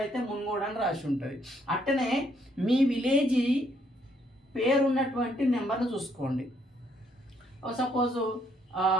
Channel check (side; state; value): both; normal; correlation 0.70